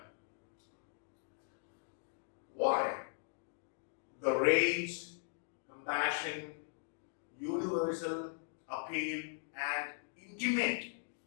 Why? The range, compassion, universal appeal, and intimate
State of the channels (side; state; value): right; silent; digital silence